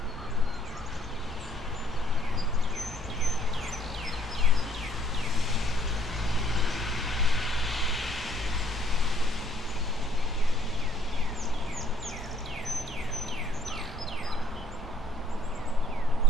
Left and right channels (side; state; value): both; normal; correlation 0.64